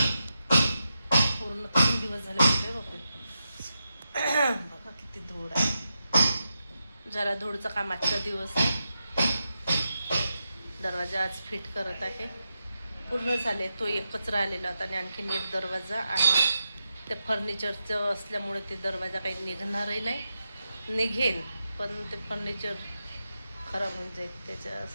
पूर्ण 3 दिवस झाले होते बापरे. बघा किती धूळ आहे. जरा धूळचं काम आजचा दिवस आहे. दरवाजा आज फिट करत आहे. पूर्ण झाले. तो एकच राहिलेला होता आणि आणखीन एक दरवाजा आणि ते फर्निचरचं असल्यामुळे ते दरवाजा काही निघणारही नाही. निघेन पण ते फर्निचर खराब होऊन जाईल,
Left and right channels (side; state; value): both; inverted; correlation -0.88